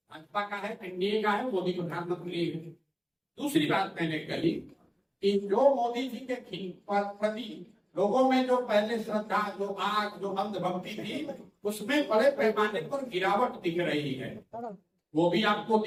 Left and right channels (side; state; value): both; identical; correlation 1.00